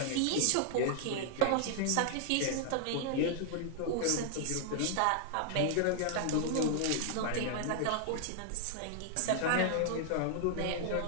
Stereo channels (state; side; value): different; both; correlation -0.01